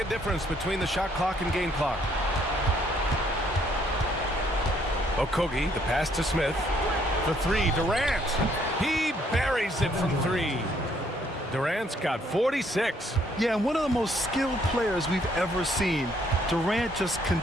difference between the shot clock and game clock. Okogie, the pass to Smith. The three, Durant. He buries it from three. Durant's got 46. Yeah, and one of the most skilled players we've ever seen. Durant just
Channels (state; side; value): normal; both; correlation 0.67